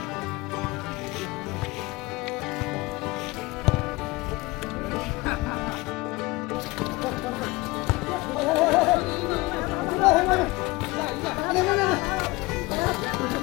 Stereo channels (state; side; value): quieter; right; 22.4 dB